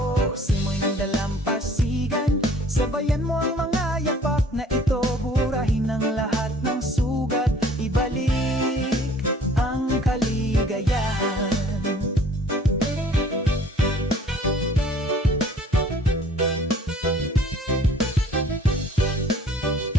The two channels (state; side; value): normal; both; correlation 0.54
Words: Simoy ng dalampasigan, sabayan mo ang mga yapak na ito. Burahin ang lahat ng sugat, ibalik ang kaligayahan.